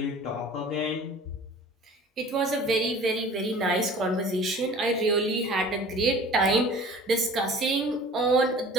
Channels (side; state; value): both; normal; correlation 0.45